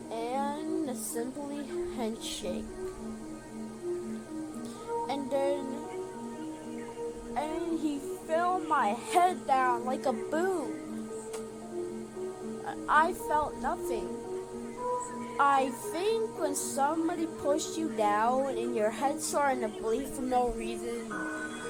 And a simply handshake. And then he fell my head down like a boom. I felt nothing. I think when somebody pushed you down and your head starting to bleed for no reason,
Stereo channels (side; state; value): both; identical; correlation 1.00